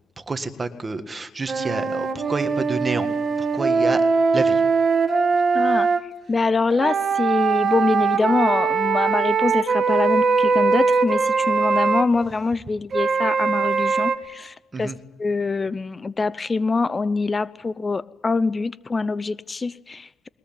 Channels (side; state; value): both; normal; correlation 0.85